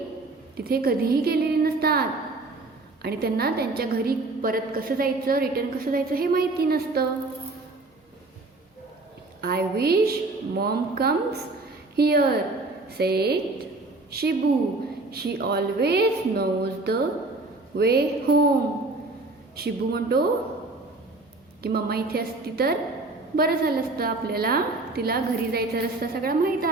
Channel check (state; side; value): quieter; left; 3.2 dB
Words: तिथे कधीही गेलेले नसतात आणि त्यांना त्यांच्या घरी परत कसं जायचं, रिटर्न कसं जायचं हे माहिती नसतं. I wish mom comes here, said Shibu. She always knows the way home. Shibu म्हणतो की मम्मा इथे असती तर बरं झालं असतं, आपल्याला तिला घरी जायचा रस्ता सगळा माहीत